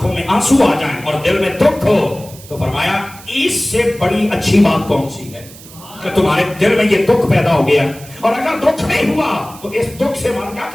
میں آنسو آ جائیں اور دل میں دکھ ہو, تو فرمایا اس سے بڑی اچھی بات کون سی ہے کہ تمہارے دل میں یہ دکھ پیدا ہو گیا. اور اگر دکھ نہیں ہوا تو اس دکھ سے مان گیا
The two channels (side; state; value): right; noise; hiss, 19 dB below the sound